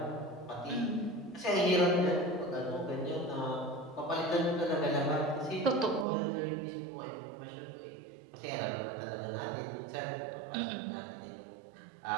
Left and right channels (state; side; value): drops out; left; at 6.1 s